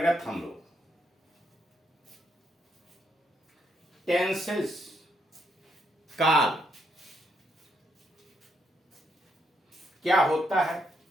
हम लोग टेंसेस, काल क्या होता है,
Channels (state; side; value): normal; both; correlation 0.76